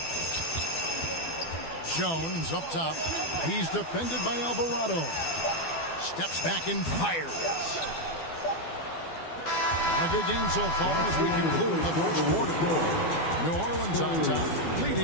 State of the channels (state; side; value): late; right; 12 ms